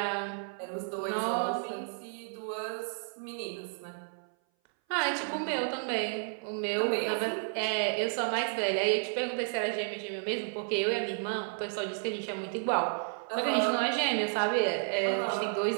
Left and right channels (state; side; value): silent; left; 57 dB below the other